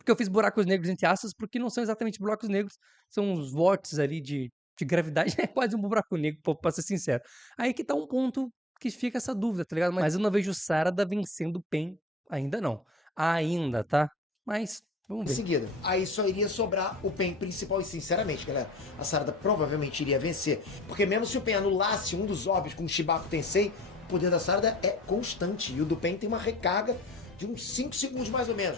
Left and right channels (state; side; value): normal; both; correlation 0.58